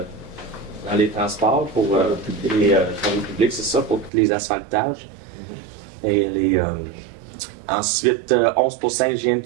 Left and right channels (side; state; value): left; drops out; at 4.1 s